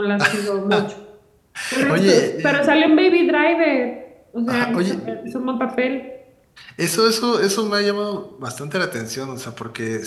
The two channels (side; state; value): both; identical; correlation 1.00